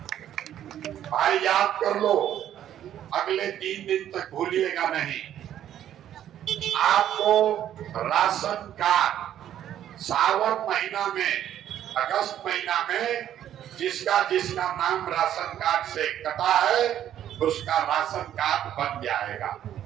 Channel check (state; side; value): quieter; left; 11.0 dB